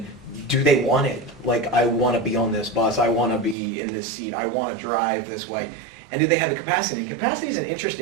Do they want it? Like, I want to be on this bus. I want to be in this seat. I want to drive this way. And do they have the capacity? And capacity is an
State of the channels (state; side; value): drops out; left; at 3.6 s